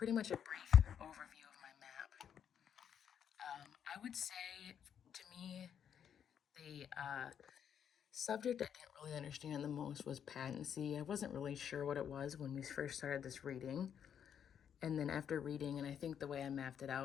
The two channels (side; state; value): right; quieter; 8.5 dB